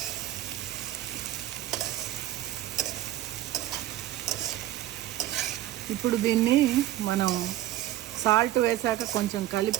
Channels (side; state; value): left; quieter; 13.9 dB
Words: ఇప్పుడు దీన్ని మనం సాల్ట్ వేసాక కొంచెం